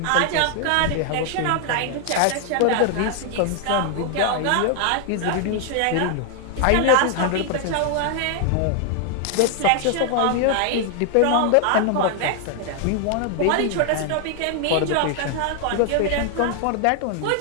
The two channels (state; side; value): different; both; correlation 0.00